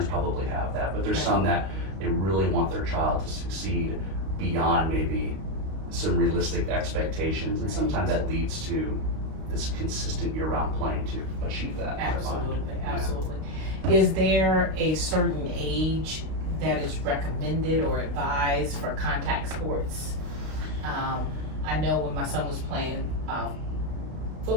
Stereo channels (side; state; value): left; late; 32 ms